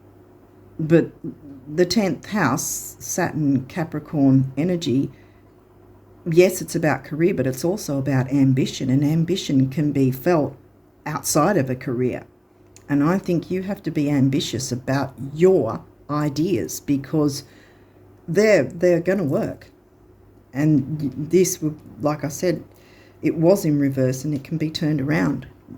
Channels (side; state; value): both; identical; correlation 1.00